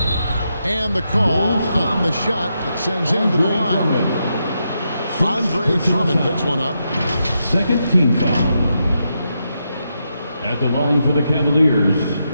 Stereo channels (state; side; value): inverted; both; correlation -0.83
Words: And the call on the shot that sends him to the line. Andre Drummond picks one up. Second team foul. At the line for the Cavaliers,